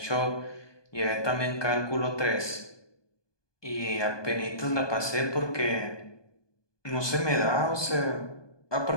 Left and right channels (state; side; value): late; right; 1.2 ms